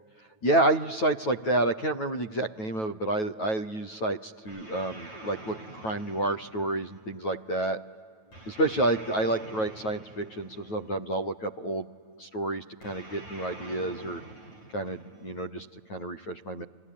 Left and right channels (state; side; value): late; right; 9.2 ms